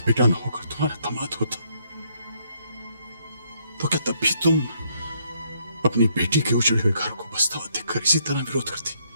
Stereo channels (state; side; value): inverted; both; correlation -0.70